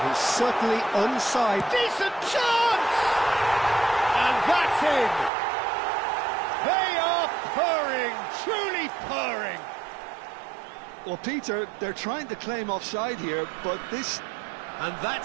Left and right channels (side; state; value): left; drops out; at 5.3 s